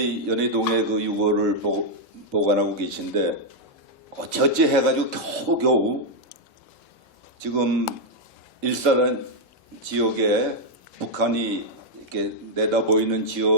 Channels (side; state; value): both; normal; correlation -0.03